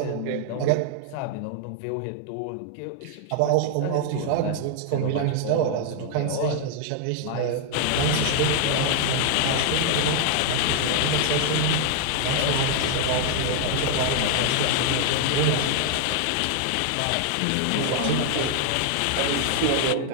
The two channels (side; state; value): both; different; correlation 0.00